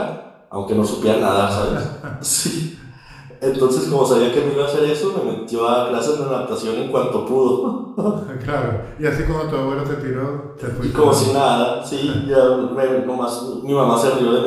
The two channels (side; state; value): both; identical; correlation 1.00